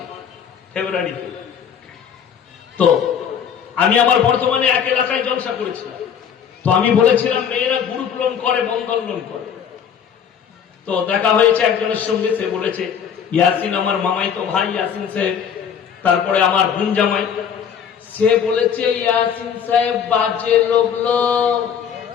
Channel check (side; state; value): right; quieter; 7.9 dB